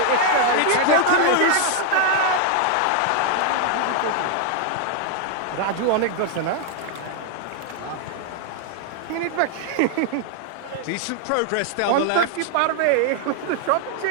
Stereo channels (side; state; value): both; different; correlation 0.00